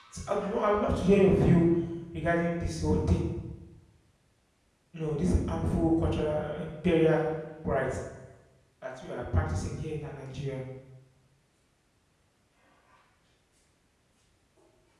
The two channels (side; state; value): both; identical; correlation 1.00